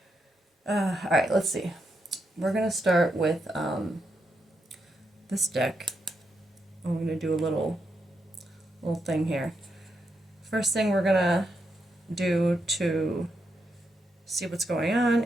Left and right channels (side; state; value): both; normal; correlation 0.83